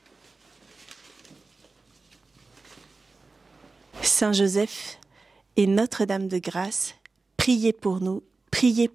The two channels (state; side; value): quieter; left; 3.8 dB